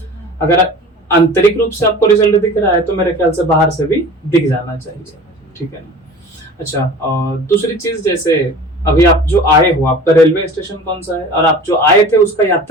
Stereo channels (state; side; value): normal; both; correlation 0.40